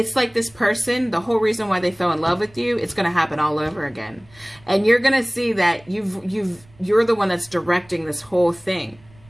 like this person, the whole reason why they fell in love with you, it's going to happen all over again. And you're going to see that you're the one that's directing this whole thing,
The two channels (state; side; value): noise; right; rumble, 27 dB below the sound